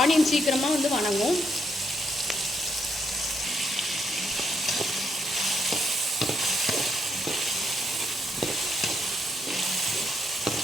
ஆனியன் சீக்கிரமாக வந்து வணங்கும்.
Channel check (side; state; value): both; normal; correlation 0.77